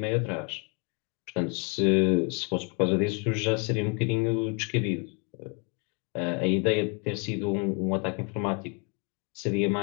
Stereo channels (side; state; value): right; quieter; 36.0 dB